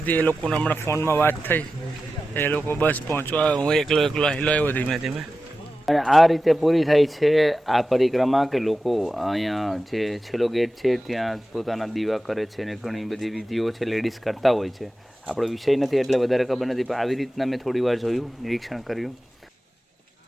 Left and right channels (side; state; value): both; normal; correlation 0.93